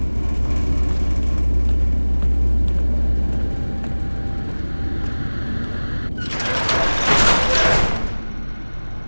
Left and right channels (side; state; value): both; inverted; correlation -1.00